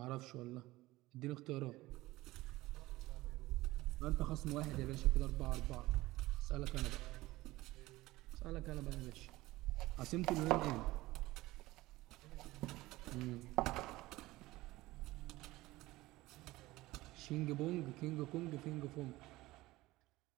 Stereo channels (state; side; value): quieter; left; 18.6 dB